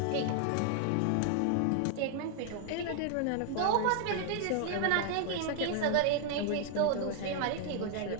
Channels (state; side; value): different; both; correlation 0.00